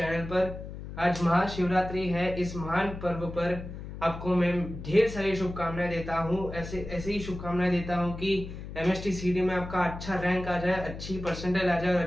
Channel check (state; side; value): noise; left; hum, 10 dB below the sound